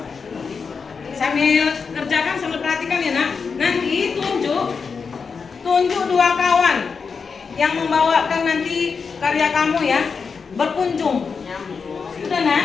Sambil kerjakan, sambil perhatikan ya nak. Nanti tunjuk dua kawan yang membawakan nanti karya kamu ya, berkunjung. Sudah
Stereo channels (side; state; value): right; quieter; 5.4 dB